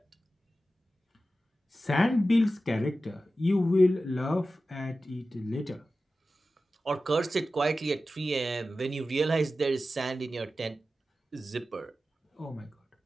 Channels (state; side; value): normal; both; correlation 0.94